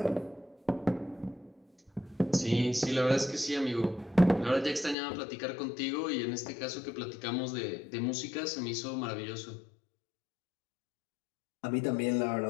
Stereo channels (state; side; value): drops out; right; at 5.0 s